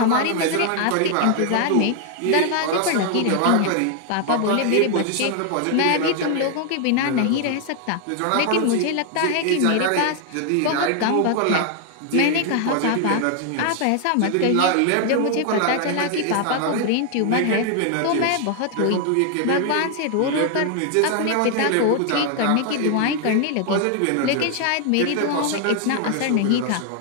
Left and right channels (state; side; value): different; both; correlation 0.00